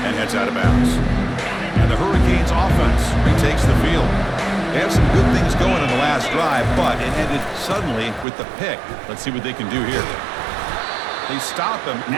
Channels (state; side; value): drops out; left; at 8.2 s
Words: and heads out of bounds. And the Hurricanes offense retakes the field. They had some good things going on the last drive, but it ended suddenly with the pick. Let's see what they can do here. They stop him